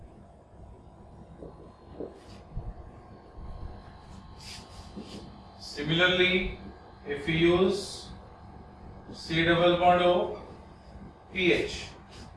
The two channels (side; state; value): both; identical; correlation 1.00